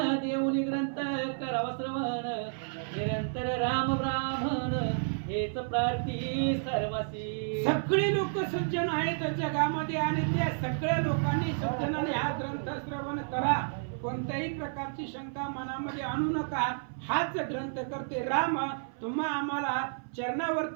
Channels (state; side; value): silent; left; 55 dB below the other